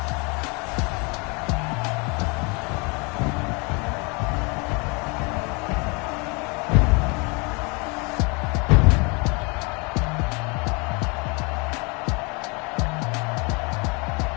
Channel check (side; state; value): right; quieter; 30.3 dB